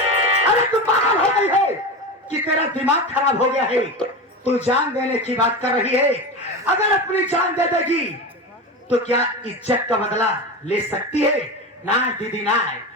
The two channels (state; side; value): normal; both; correlation 0.23